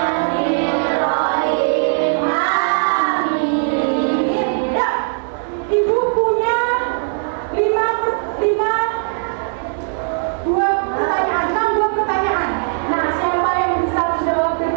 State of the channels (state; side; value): silent; left; digital silence